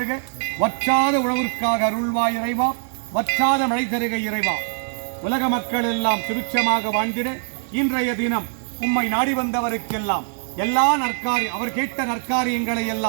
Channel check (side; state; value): left; silent; digital silence